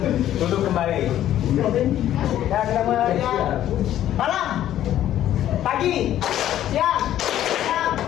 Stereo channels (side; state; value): right; quieter; 12.1 dB